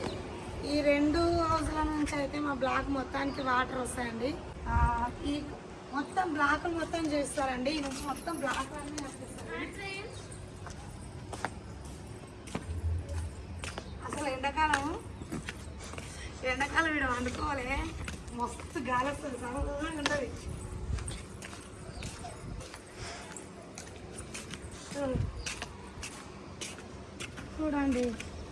ఈ 2 హౌస్ల నుంచి అయితే మా బ్లాక్ మొత్తానికి వాటర్ వస్తాయండి. ఈ మొత్తం బ్లాక్ మొత్తం చేస్తారండి. ఈ నుంచి మొత్తం బ్లాక్ అన్నీ వస్తాయి. అసలు అసలు ఎండాకాలం వీడు వండుకోవాలి మస్తు గాలి వస్తుంది చల్లగా ఉంటుంది చూడండి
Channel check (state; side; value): identical; both; correlation 1.00